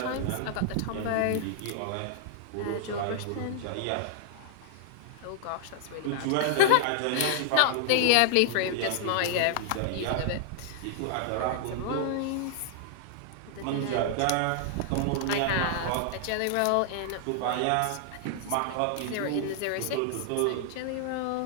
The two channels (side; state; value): both; different; correlation 0.00